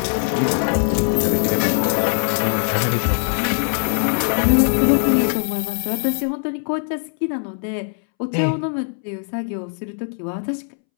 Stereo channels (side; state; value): right; silent; 65 dB below the other